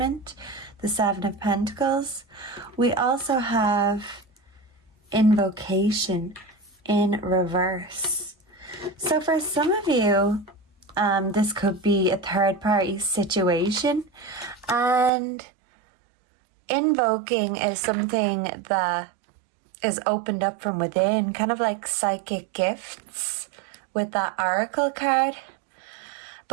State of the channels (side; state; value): left; drops out; at 15.1 s